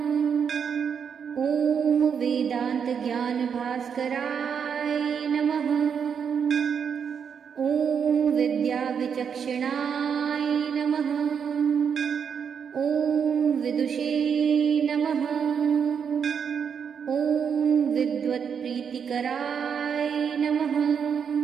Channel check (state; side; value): quieter; left; 7.1 dB